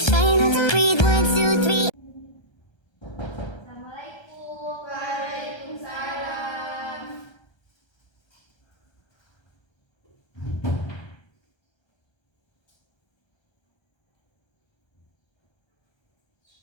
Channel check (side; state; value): right; late; 1.3 ms